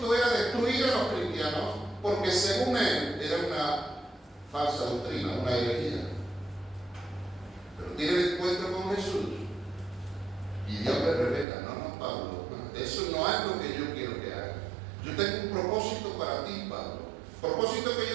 era destruir a los cristianos, porque según él era una falsa doctrina, una herejía. Pero tiene el encuentro con Jesús y Dios le revela, no, Pablo, eso no es lo que yo quiero que hagas. Yo tengo un propósito para ti, Pablo. El propósito que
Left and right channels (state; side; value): drops out; left; at 11.5 s